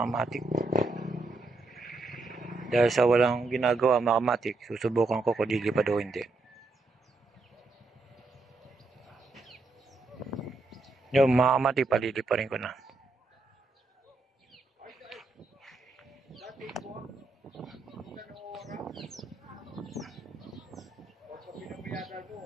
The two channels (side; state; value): left; quieter; 3.3 dB